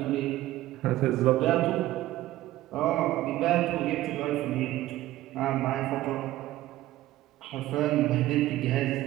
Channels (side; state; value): left; quieter; 15.5 dB